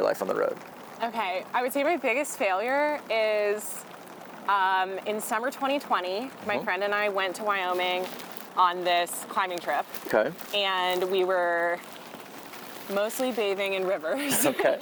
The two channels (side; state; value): both; identical; correlation 1.00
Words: life on the road? Okay, I would say my biggest failure is in summer 2020, my friend and I went to Wyoming on this climbing trip. Okay. And we were mostly bathing in rivers. Okay.